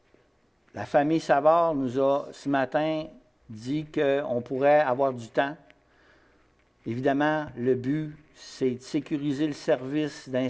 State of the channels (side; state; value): both; identical; correlation 1.00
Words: La famille Savard nous a, ce matin, dit qu'on pourrait avoir du temps. Évidemment, le but, c'est de sécuriser le service